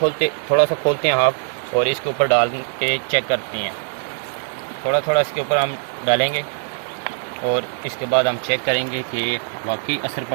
थोड़ा सा खोलते हैं हाफ और इसके ऊपर डाल के चेक करते हैं। थोड़ा इसके ऊपर हम डालेंगे और इसके बाद हम चेक करेंगे कि वाकई असर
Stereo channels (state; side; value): silent; left; digital silence